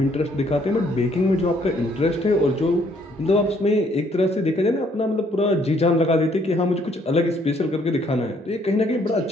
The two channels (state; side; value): normal; both; correlation 0.66